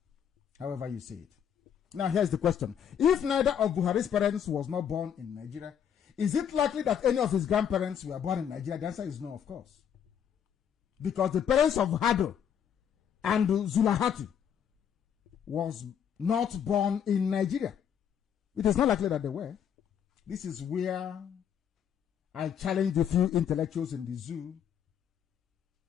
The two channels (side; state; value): right; quieter; 8.5 dB